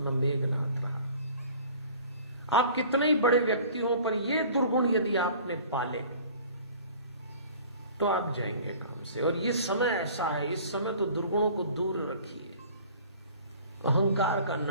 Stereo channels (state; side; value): inverted; both; correlation -0.47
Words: मेघनाथ रहा। आप कितने ही बड़े व्यक्ति हो, पर ये दुर्गुण यदि आपने पाले तो आप जाएंगे काम से। और ये समय ऐसा है, इस समय तो दुर्गुणों को दूर रखिए। अहंकार का